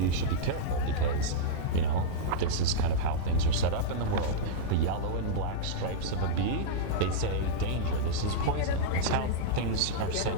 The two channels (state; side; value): different; both; correlation -0.03